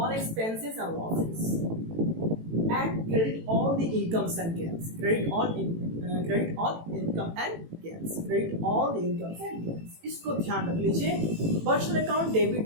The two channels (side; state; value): left; late; 18 ms